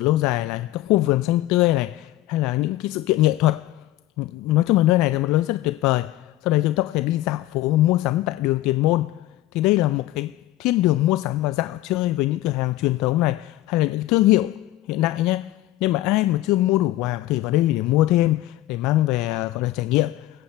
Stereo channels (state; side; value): quieter; right; 15.8 dB